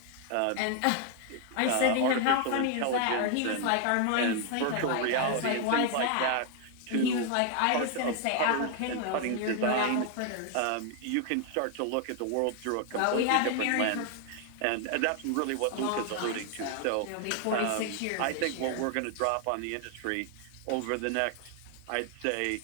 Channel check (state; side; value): different; both; correlation 0.00